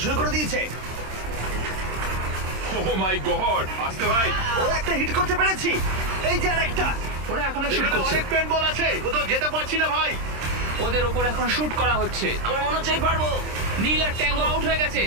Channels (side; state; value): left; late; 26 ms